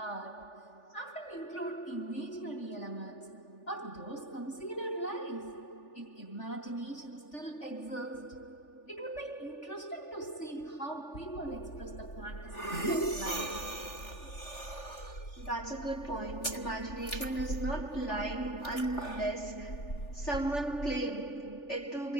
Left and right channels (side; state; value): right; late; 3.4 ms